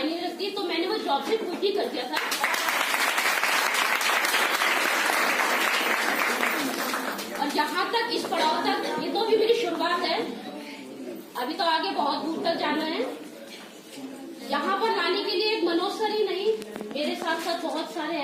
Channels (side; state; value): both; identical; correlation 1.00